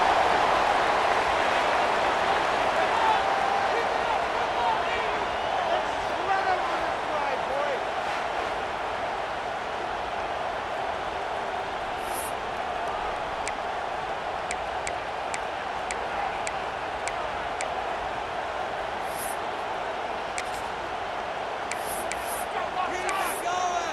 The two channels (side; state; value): both; identical; correlation 1.00